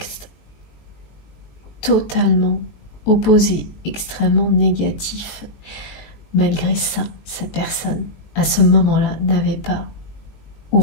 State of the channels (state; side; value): late; right; 19 ms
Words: totalement opposé, extrêmement négatif. Malgré ça, cette personne, à ce moment-là, n'avait pas